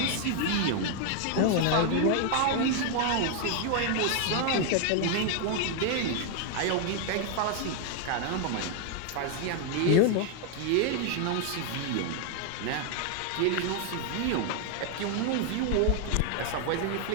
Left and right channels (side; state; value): both; different; correlation 0.01